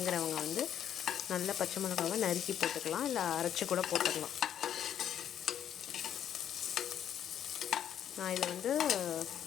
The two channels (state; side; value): quieter; right; 9.8 dB